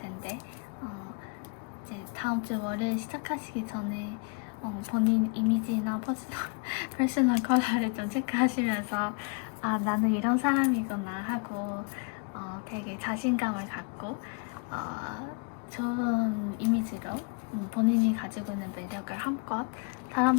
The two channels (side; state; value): right; quieter; 35.2 dB